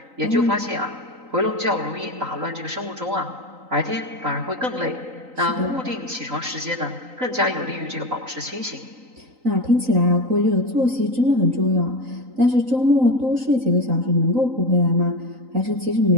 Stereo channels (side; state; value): left; late; 3.9 ms